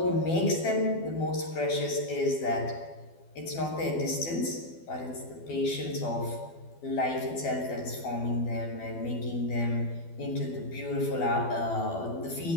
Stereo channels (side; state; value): right; late; 12 ms